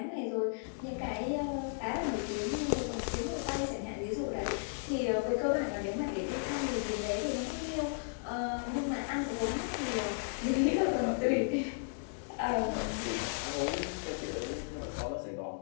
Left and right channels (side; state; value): right; silent; digital silence